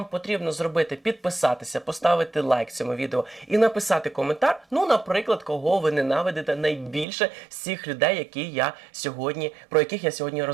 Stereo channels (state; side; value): drops out; left; at 7.1 s